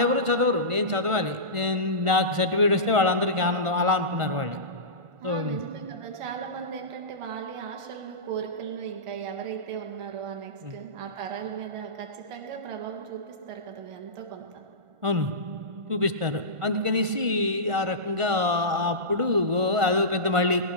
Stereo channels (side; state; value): left; late; 1.5 ms